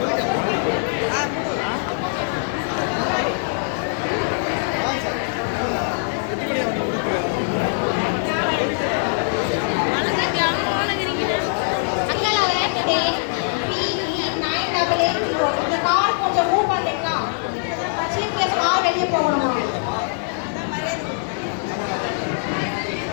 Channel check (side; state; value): right; silent; 64 dB below the other